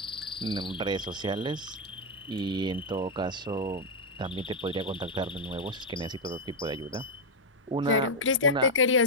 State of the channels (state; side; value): normal; both; correlation 0.01